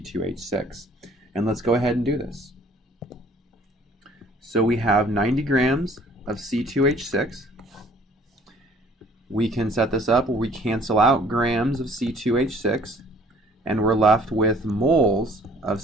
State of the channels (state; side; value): normal; both; correlation 0.55